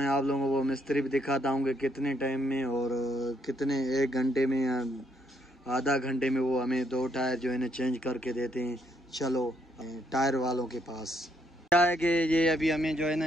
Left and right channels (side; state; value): both; normal; correlation 0.73